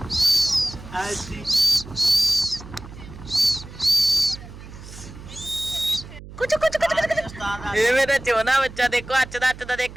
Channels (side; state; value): right; noise; hum, 16 dB below the sound